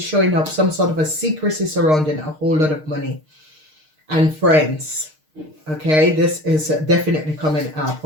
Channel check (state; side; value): late; left; 6.5 ms